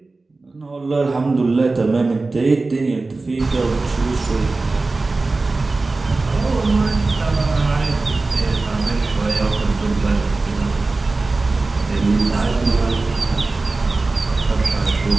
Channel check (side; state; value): left; quieter; 3.5 dB